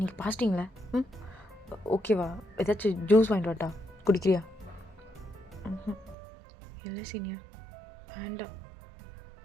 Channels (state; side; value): drops out; left; at 6.2 s